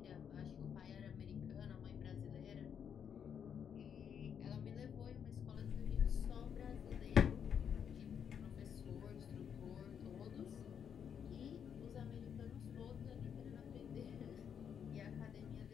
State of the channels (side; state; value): right; quieter; 7.9 dB